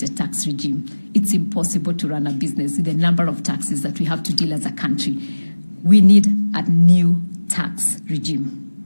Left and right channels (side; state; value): both; inverted; correlation -1.00